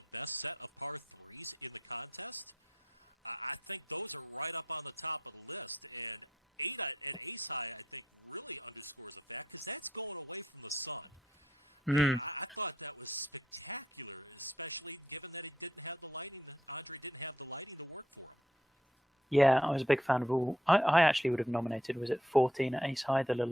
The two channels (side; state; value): both; normal; correlation 0.73